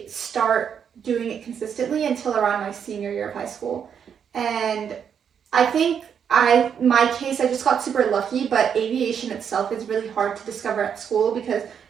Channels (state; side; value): quieter; left; 7.7 dB